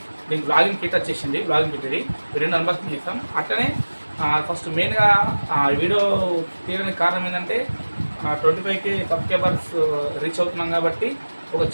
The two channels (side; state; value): both; inverted; correlation -1.00